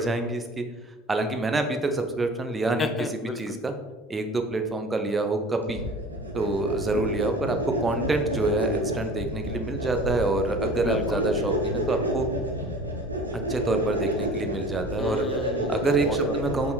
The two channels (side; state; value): both; normal; correlation 0.42